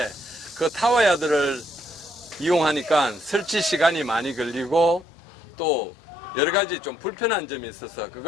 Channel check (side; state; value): right; drops out; at 5.1 s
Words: 그 타워야드를 이용하니까 설치 시간이 많이 걸리고 또 여러 가지 좀 불편한 점이 있어서